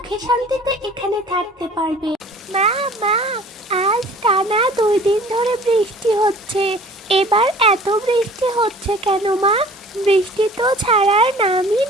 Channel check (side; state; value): both; normal; correlation 0.48